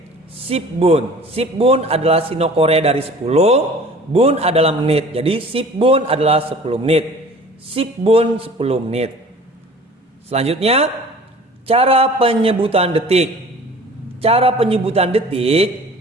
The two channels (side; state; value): both; normal; correlation 0.45